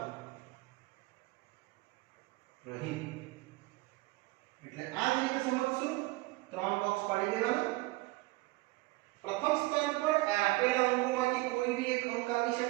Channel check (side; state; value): left; quieter; 21.5 dB